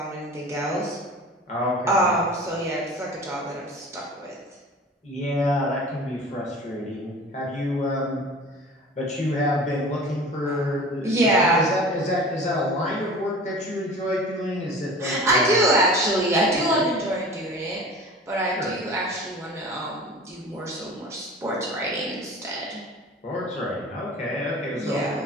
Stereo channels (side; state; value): both; normal; correlation 0.39